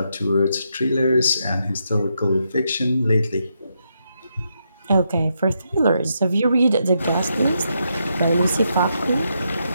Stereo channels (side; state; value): both; inverted; correlation -0.81